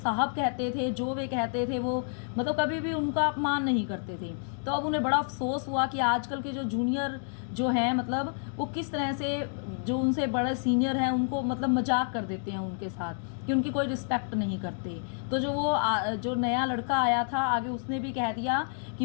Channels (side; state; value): right; silent; digital silence